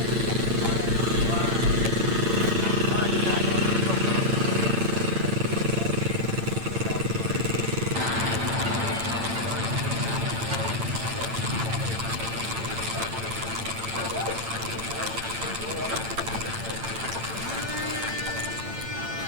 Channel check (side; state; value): left; late; 8.9 ms